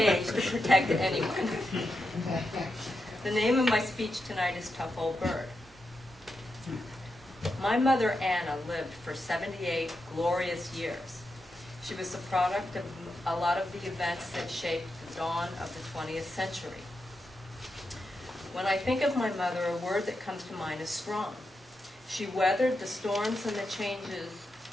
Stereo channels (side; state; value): both; normal; correlation 0.86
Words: to protect anyone. The name of my speech tonight is Tough Old Bird. My mother, Anna, lived for 78 glorious years. She was the product of a lot of the events that shaped the dawn of the 20th century. When I think of my mother, a word that comes to mind is strong. She weathered the storms and the changes